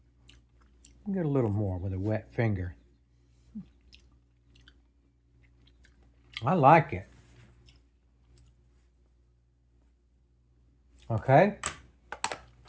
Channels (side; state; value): both; identical; correlation 1.00